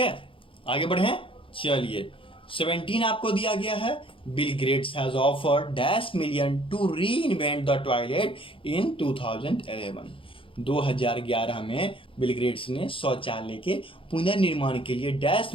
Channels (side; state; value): right; late; 0.25 ms